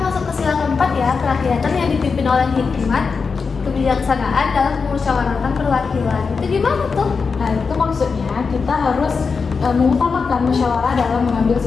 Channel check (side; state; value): right; quieter; 5.1 dB